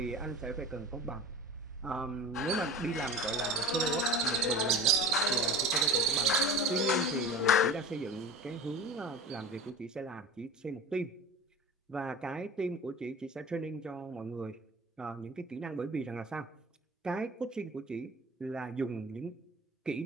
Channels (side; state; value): both; normal; correlation 0.35